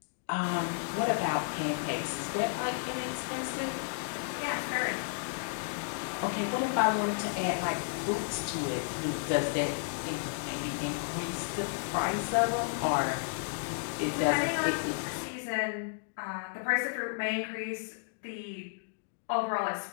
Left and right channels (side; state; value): right; silent; digital silence